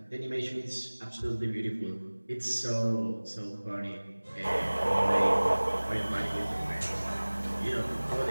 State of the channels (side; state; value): both; inverted; correlation -1.00